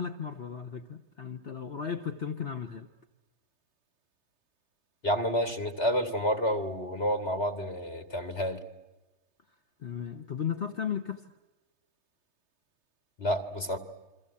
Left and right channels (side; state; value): right; late; 3.3 ms